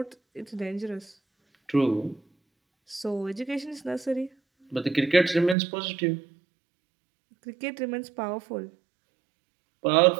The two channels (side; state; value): left; drops out; at 5.6 s